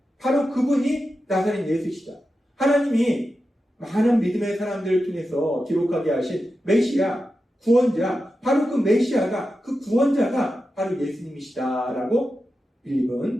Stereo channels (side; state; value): both; normal; correlation 0.90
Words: 바로 그분이 나사렛 예수시다. 하나님이 많은 믿음의 사람들을 통해서 기록하게 하신 메시아, 구원자, 바로 그 메시아가, 그 구원자가 바로 예수님이시다라고